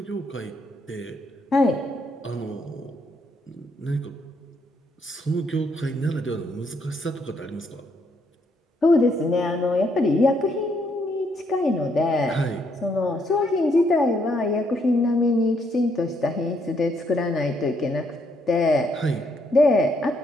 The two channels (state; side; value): normal; both; correlation 0.73